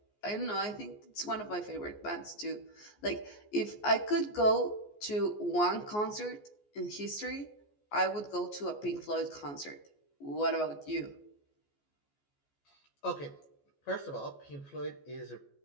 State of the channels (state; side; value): late; right; 14 ms